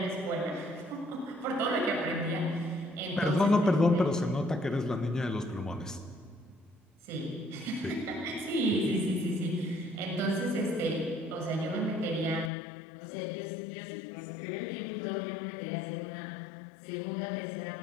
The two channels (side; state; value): right; drops out; at 12.5 s